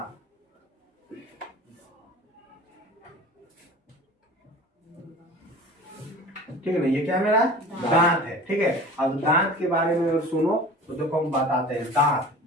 ठीक है ना। ये क्या मेरा दांत है, ठीक है। अब दांत के बारे में अगर सुनो तो देखो हम बताते हैं। दांत,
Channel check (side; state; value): both; normal; correlation 0.40